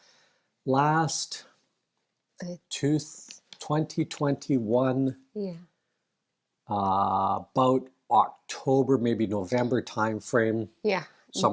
last Uh, two, 2021, yeah. about October, maybe November time frame, Yeah.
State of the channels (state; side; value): identical; both; correlation 1.00